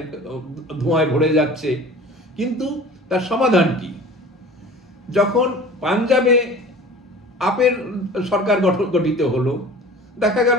ধোঁয়ায় ভরে যাচ্ছে। কিন্তু তার সমাধান কি? যখন পাঞ্জাবে আপের সরকার গঠিত হলো, দেখা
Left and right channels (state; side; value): normal; both; correlation 0.42